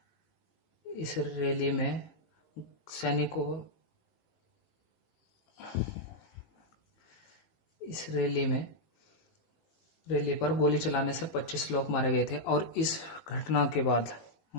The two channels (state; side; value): late; right; 19 ms